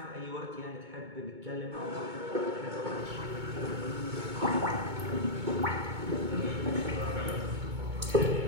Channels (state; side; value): late; left; 2.2 ms